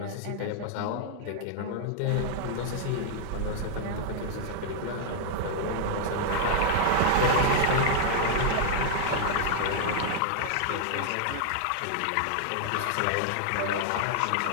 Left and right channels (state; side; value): different; both; correlation 0.00